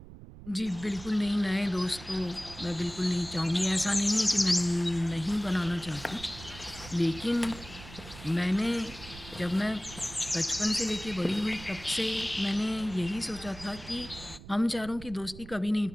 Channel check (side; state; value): right; noise; rumble, 16 dB below the sound